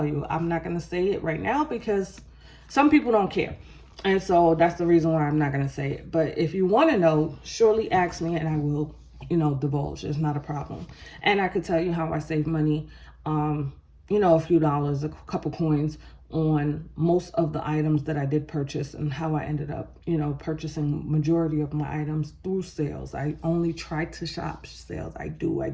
you, I'm not going to say it right now because some people don't care. And so that's the reason why I'm not going to say it. But if you want to know, surely ask me and I will, divulge. It's not a problem. And I could tell you how I save money, a few dollars, a couple coins on most of the items that I did purchase and how I ended up, purchasing majority of my items through sales. I only try to shop sales. I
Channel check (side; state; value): both; identical; correlation 1.00